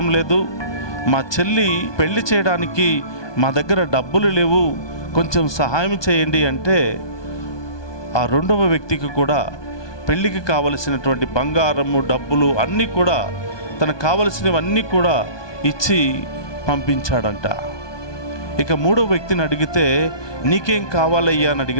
లేదు, మా చెల్లి పెళ్లి చేయడానికి మా దగ్గర డబ్బులు లేవు, కొంచెం సహాయం చేయండి అంటే ఆ 2వ వ్యక్తికి కూడా పెళ్లికి కావలసినటువంటి బంగారము, డబ్బులు అన్నీ కూడా, తనకు కావలసినవన్నీ కూడా ఇచ్చి పంపించాడంట. ఇక 3వ వ్యక్తిని అడిగితే నీకేం కావాలయ్యా అని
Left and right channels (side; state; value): right; late; 1.2 ms